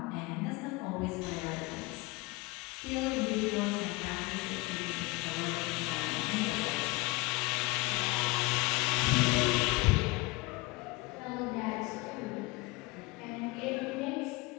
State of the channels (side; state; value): right; quieter; 23.9 dB